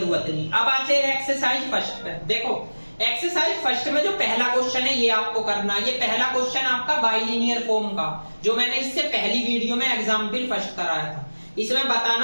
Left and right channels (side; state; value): both; inverted; correlation -1.00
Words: नहीं। अब आते हैं एक्सरसाइज फर्स्ट पे। देखो एक्सरसाइज फर्स्ट में जो पहला क्वेश्चन है ये आपको करना है। ये पहला क्वेश्चन आपका बाइलिनियर फॉर्म का जो मैंने इससे पहली वीडियो में एग्जाम्पल फर्स्ट कराया था इसमें